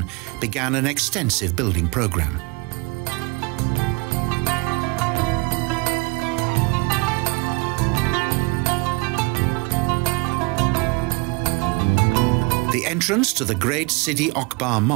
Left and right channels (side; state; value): left; quieter; 28.4 dB